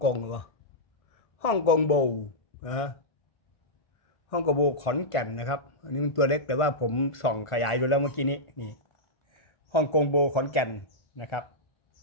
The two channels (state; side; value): late; right; 1.5 ms